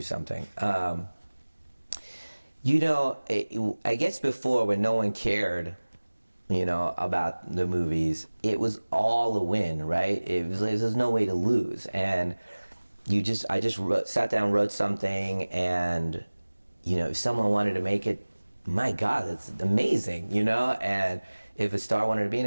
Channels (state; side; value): inverted; both; correlation -1.00